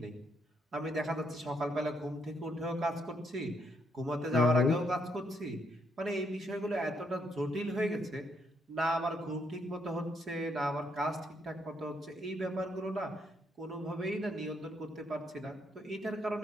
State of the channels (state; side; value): normal; both; correlation 0.74